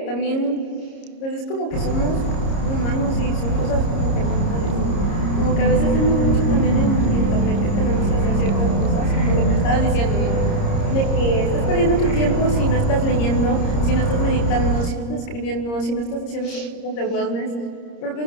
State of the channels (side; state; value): right; late; 30 ms